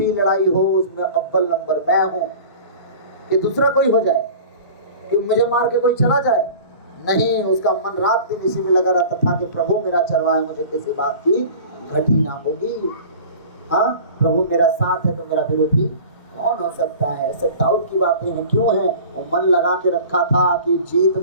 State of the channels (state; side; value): inverted; both; correlation -0.40